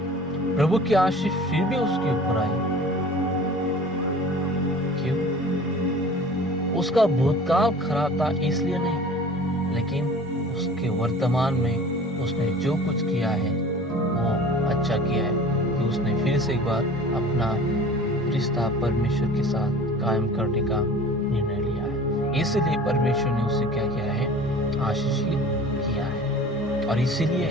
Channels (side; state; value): both; normal; correlation 0.43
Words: प्रभु की आशीष फिर भी उसके ऊपर आई। क्यों? उसका भूतकाल खराब था इसलिए नहीं, लेकिन उसके वर्तमान में उसने जो कुछ किया है वो अच्छा किया है कि उसने फिर से एक बार अपना रिश्ता परमेश्वर के साथ कायम करने का निर्णय लिया है। इसलिए परमेश्वर ने उसे क्या किया है, आशीषित किया है। और इसीलिए